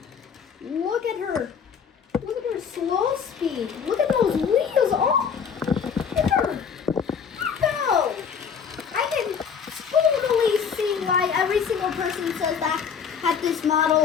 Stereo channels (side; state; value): right; quieter; 6.8 dB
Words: look at her. Look at her slow speed. Look at those wheels. Oh, look at her. No. I can totally see why every single person says that this